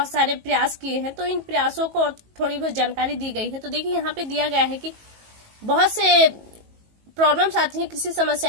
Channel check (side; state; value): left; late; 19 ms